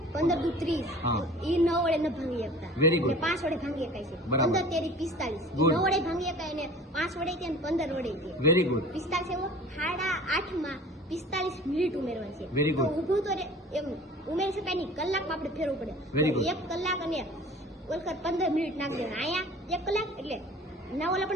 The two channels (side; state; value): both; normal; correlation 0.44